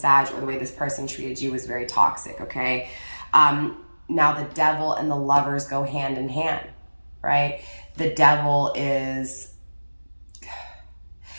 or the way this person treated you was very toxic, okay? Now the Devil and the Lovers go hand in hand, right? The Devil is,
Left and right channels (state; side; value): inverted; both; correlation -1.00